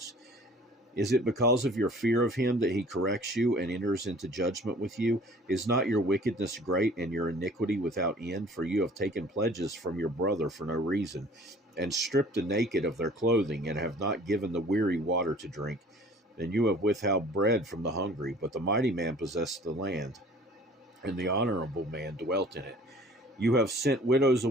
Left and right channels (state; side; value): normal; both; correlation 0.50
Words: Is it because of your fear of him that he corrects you and enters into judgment with you? Is not your wickedness great and your iniquity without end? For you have taken pledges from your brother for no reason, and stripped the naked of their clothing, and have not given the weary water to drink. And you have withheld bread from the hungry, but the mighty man possessed the land, and the honorable man dwelt in it. You have sent widows